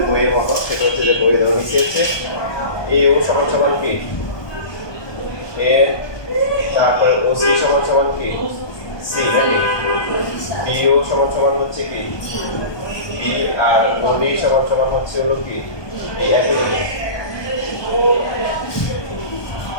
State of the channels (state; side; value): late; right; 1.2 ms